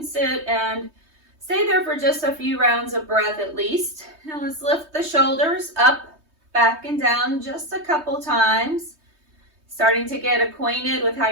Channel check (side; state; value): left; late; 3.2 ms